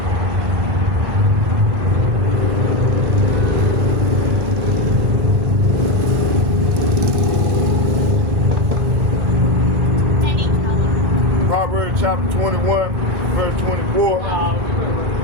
Proverbs chapter 21, verse 24.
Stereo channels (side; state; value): left; late; 1.1 ms